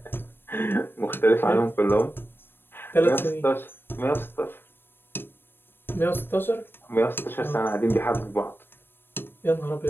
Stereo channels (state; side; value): late; right; 0.10 ms